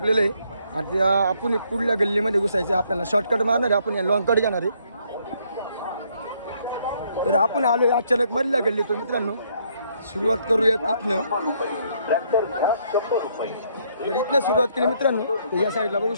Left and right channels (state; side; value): inverted; both; correlation -0.69